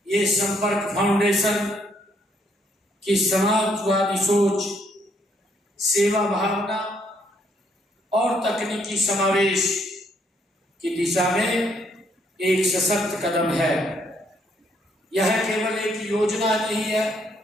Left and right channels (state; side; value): normal; both; correlation 0.70